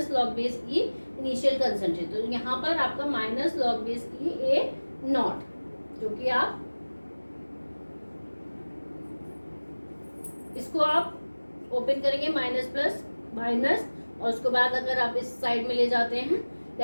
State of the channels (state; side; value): inverted; both; correlation -1.00